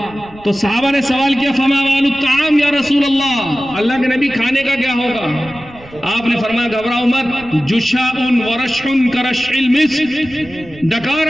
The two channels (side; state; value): right; noise; rumble, 21 dB below the sound